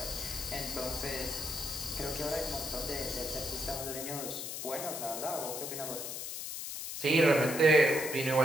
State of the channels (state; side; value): noise; left; hiss, 6 dB below the sound